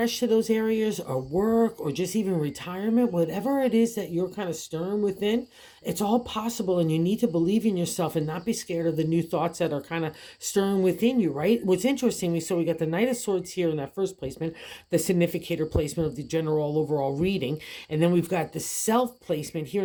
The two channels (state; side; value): identical; both; correlation 1.00